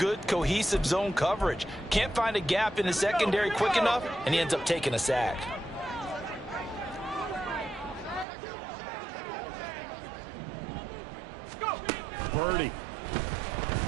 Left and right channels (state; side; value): drops out; left; at 8.2 s